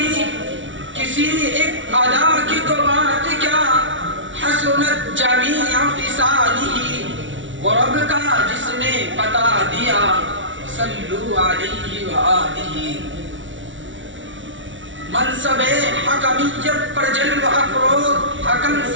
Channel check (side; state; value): left; late; 0.56 ms